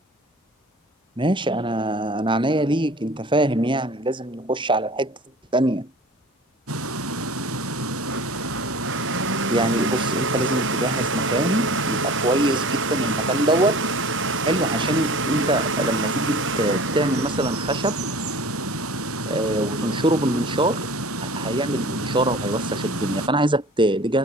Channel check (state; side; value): normal; both; correlation 0.43